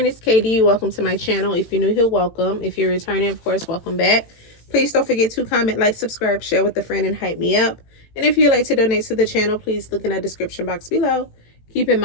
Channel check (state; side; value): late; right; 18 ms